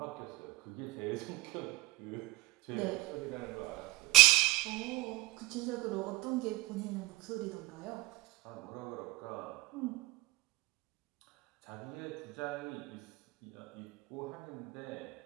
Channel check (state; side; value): quieter; left; 20.9 dB